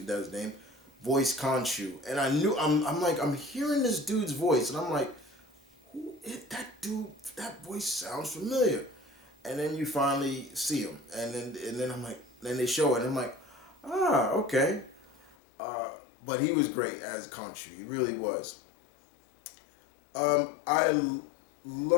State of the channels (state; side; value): drops out; right; at 15.4 s